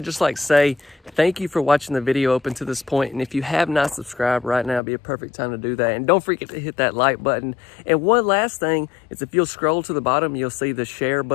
just like to say thank you for watching the video up until this point. And if you have not subscribed right now, it'd be a perfect time to do that. And don't forget to hit that like button. And one last thing is if you'll scroll to the bottom, you'll see the share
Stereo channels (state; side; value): drops out; right; at 4.8 s